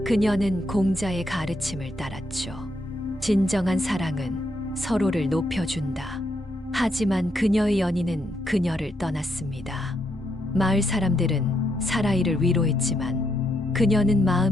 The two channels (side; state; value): both; normal; correlation 0.78